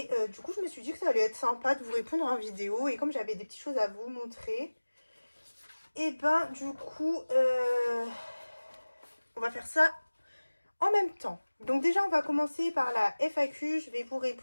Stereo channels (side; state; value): both; inverted; correlation -1.00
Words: du coup je me suis dit que ça allait être sympa de vous répondre en vidéo. Et comme j'avais des petites choses à vous montrer, et ben du coup, on va faire ça en même temps. Donc déjà, on va commencer par la FAQ. Je vais vous